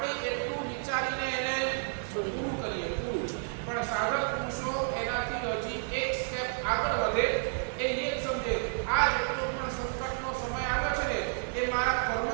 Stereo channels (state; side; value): silent; left; 57 dB below the other